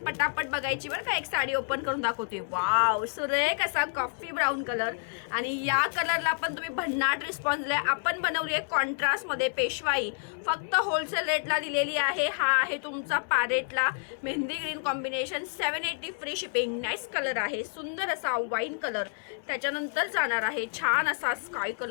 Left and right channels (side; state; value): right; silent; digital silence